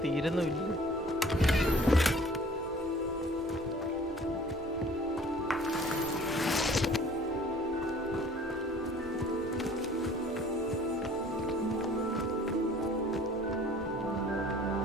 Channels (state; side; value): normal; both; correlation 0.51